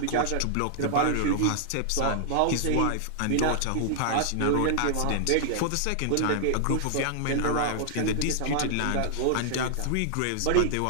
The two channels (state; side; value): different; both; correlation -0.01